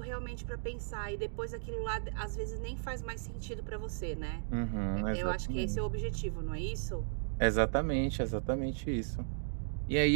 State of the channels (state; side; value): silent; left; digital silence